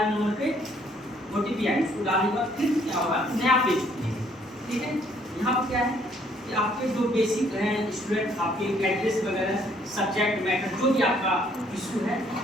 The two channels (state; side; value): normal; both; correlation 0.65